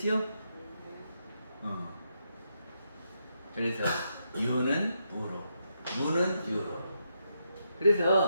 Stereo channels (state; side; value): inverted; both; correlation -0.81